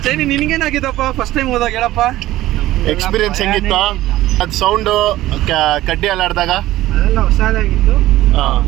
ಚೈನಿ, ನಿನ್ಗೇನಾಗಿದ್ದಪ್ಪ ಫಸ್ಟ್ ಟೈಮ್ ಹೋದಾಗ? ಹೇಳಪ್ಪ ಎಕ್ಸ್ಪೀರಿಯನ್ಸ್ ಹೆಂಗಿತ್ತು? ಅದು ಸೌಂಡು ಕಡ್ಡಿ ಅಲ್ಲಾಡ್ದಾಗ ಅದೆಲ್ಲ ಹೊಸದಾಗಿತ್ತು.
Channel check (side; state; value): left; quieter; 15.7 dB